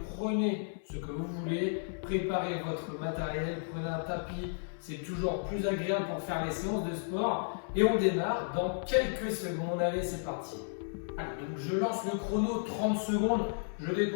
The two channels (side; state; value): right; silent; 56 dB below the other